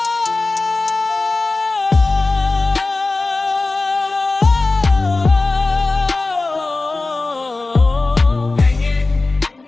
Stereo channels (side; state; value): right; quieter; 3.4 dB